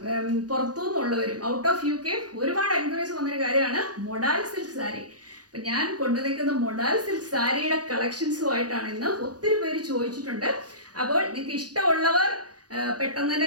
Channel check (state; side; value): late; left; 0.69 ms